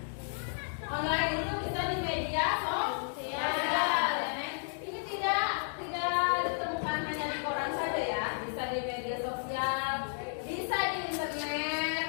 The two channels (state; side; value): silent; right; digital silence